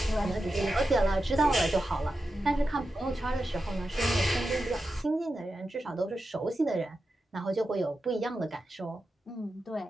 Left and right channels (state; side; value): normal; both; correlation 0.90